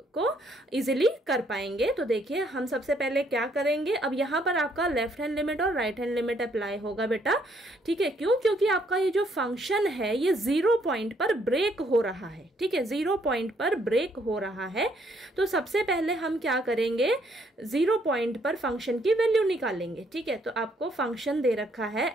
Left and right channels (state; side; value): normal; both; correlation 0.69